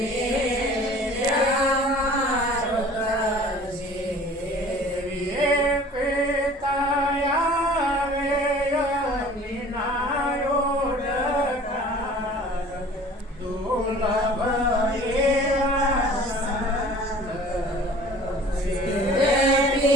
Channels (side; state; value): both; normal; correlation 0.46